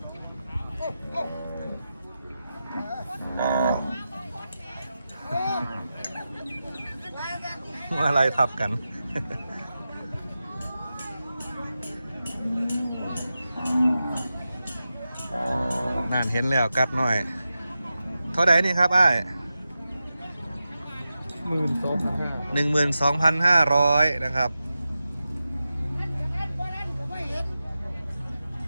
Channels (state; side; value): inverted; both; correlation -0.92